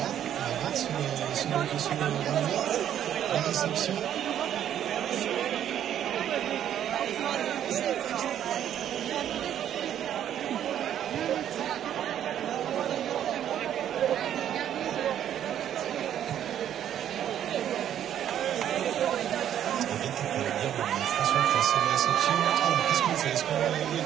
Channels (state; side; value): quieter; left; 10.4 dB